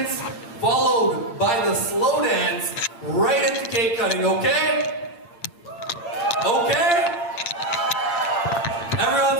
followed by the slow dance, right into cake cutting, okay? Okay?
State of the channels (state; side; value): late; right; 8.5 ms